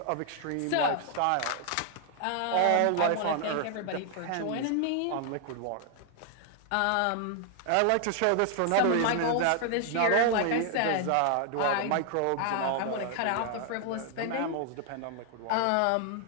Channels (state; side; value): different; both; correlation 0.00